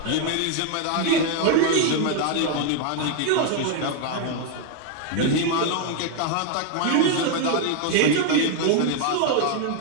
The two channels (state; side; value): different; both; correlation 0.01